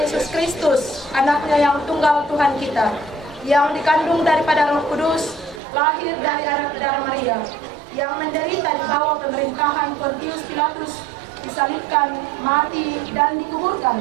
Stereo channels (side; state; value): left; drops out; at 5.6 s